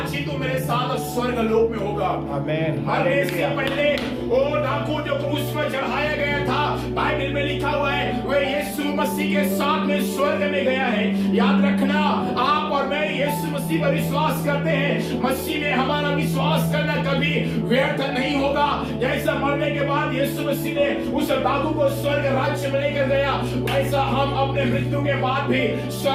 ही तू मेरे साथ स्वर्ग लोक में होगा। आमीन। इससे पहले वो डाकू जो क्रूस पर चढ़ाया गया था, बाइबल में लिखा हुआ है वह यीशु मसीह के साथ में स्वर्ग में गया है। याद रखना आप और मैं यीशु मसीह पर विश्वास करते हैं, मसीह में हमारा विश्वास करना कभी व्यर्थ नहीं होगा। जैसा मरने के बाद यीशु मसीह ने उस डाकू को स्वर्ग राज्य में लेकर गया, वैसा हम अपने मृत्यु के बाद भी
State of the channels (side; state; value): both; identical; correlation 1.00